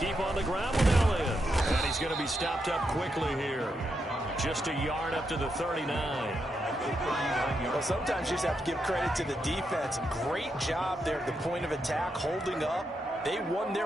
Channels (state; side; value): normal; both; correlation 0.83